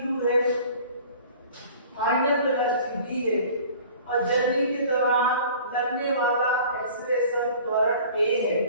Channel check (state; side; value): inverted; both; correlation -0.47